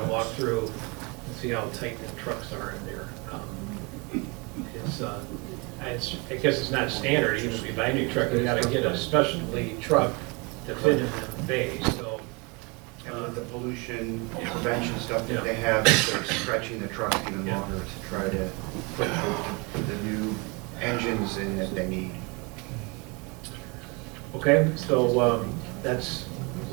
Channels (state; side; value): quieter; left; 29.5 dB